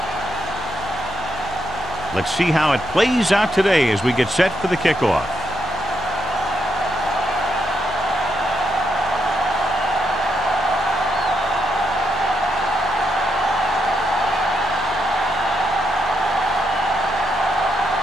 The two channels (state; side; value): noise; left; hum, 15 dB below the sound